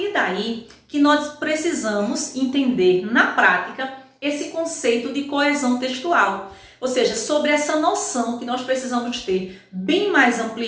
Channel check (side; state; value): both; identical; correlation 1.00